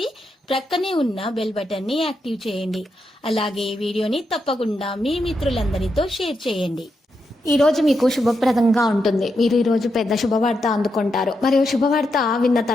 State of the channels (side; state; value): both; normal; correlation 0.84